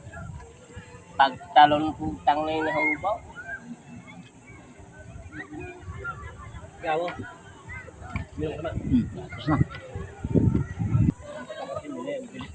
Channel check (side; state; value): both; identical; correlation 1.00